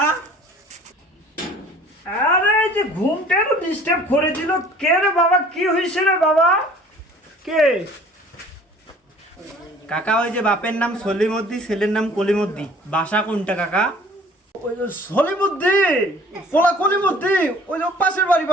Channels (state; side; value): normal; both; correlation 0.50